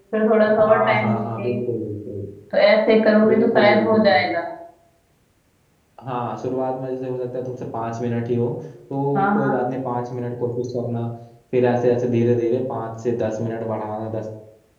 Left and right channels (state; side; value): identical; both; correlation 1.00